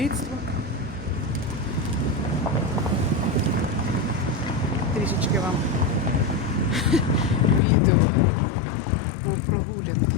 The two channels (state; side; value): drops out; right; at 7.6 s